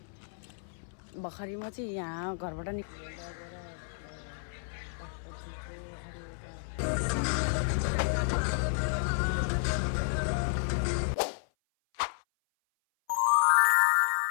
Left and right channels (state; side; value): silent; right; 57 dB below the other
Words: भर्खरै म चाहिँ यहाँ घरबाट